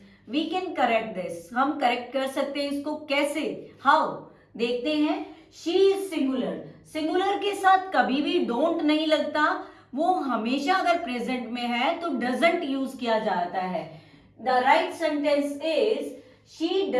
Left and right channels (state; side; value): identical; both; correlation 1.00